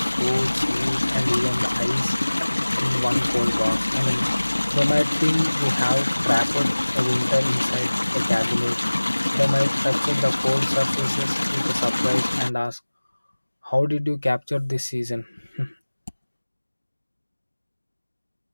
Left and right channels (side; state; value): both; inverted; correlation -1.00